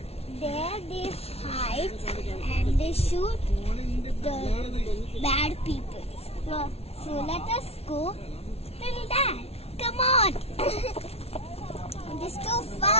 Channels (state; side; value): late; right; 0.30 ms